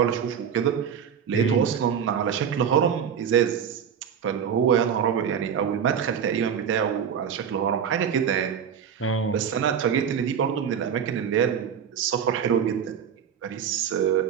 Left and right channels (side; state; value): left; quieter; 7.9 dB